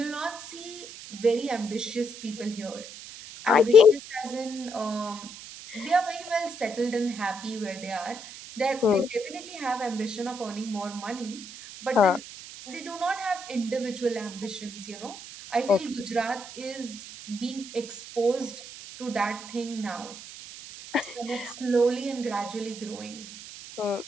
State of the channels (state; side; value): noise; right; hiss, 13 dB below the sound